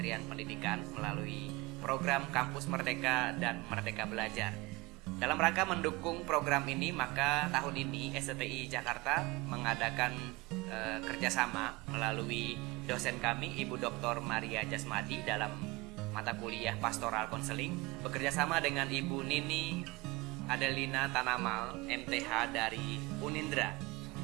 Pendidikan melalui program Kampus Merdeka dan Merdeka Belajar. Dalam rangka mendukung program ini, maka tahun ini STI Jakarta mengadakan kerjasama melalui dosen kami, Ibu Dr. Maria Jasmadi, dalam mata kuliah Pastoral Konseling, bekerjasama dengan Ibu Nini Adelina Tanamal, MTH dari Unindra.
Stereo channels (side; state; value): left; quieter; 22.9 dB